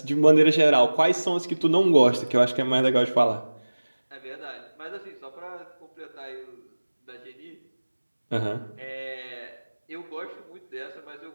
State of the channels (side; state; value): both; inverted; correlation -1.00